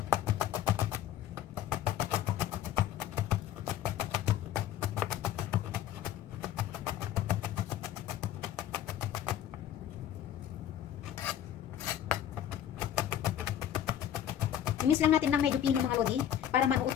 I-mix lang natin ng medyo pino mga lodi para manuot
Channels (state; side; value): quieter; right; 10.8 dB